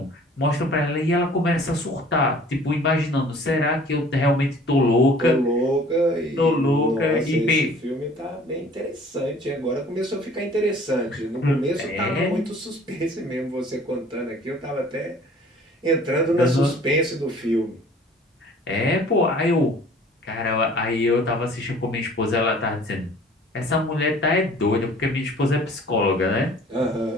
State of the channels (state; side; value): normal; both; correlation 0.51